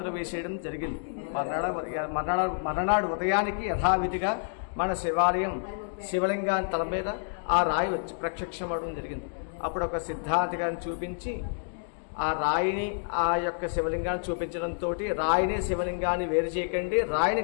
వేసేయడం జరిగింది. మర్నాడు ఉదయానికి యథావిధిగా మన శివాలయం శివలింగాన్ని తల మీద ఆ రాయి వచ్చి ప్రత్యక్షమవడం జరిగింది. అప్పుడు ఒక సిద్ధాంతి గారిని చూపించి ఆ రాయిని ఆ యొక్క శివలింగాన్ని చూపించడంతో రాయిని శివలింగాన్ని వేరు చేయకండి, రాయిని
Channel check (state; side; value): silent; right; digital silence